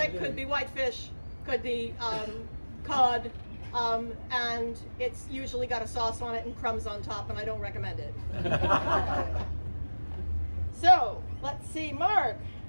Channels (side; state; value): both; inverted; correlation -1.00